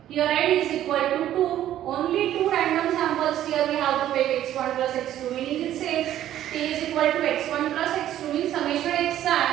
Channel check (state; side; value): quieter; left; 12.2 dB